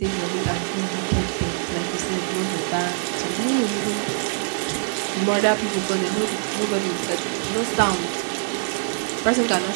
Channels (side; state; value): left; silent; digital silence